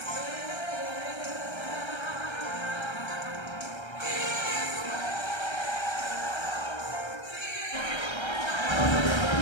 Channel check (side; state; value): right; late; 1.3 ms